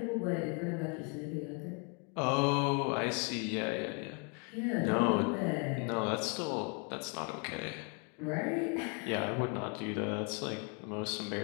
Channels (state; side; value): quieter; right; 34.8 dB